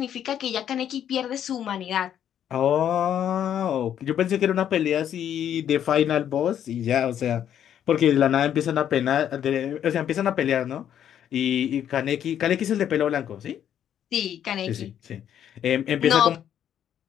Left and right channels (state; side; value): quieter; right; 9.9 dB